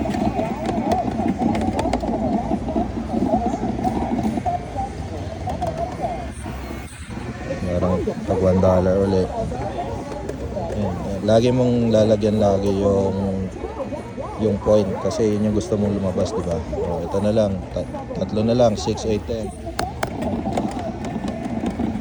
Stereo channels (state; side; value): identical; both; correlation 1.00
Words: Parang tag $1 ulit. Yan. Lagi mong lalagyan yung point kasi yun yung gusto mong lumabas, di ba? Oh, ito na lang, tatlo na lang, 6, 8, 10.